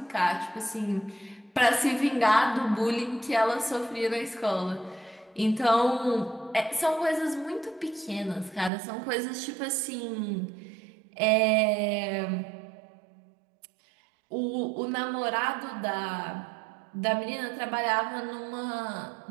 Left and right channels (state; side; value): drops out; left; at 8.7 s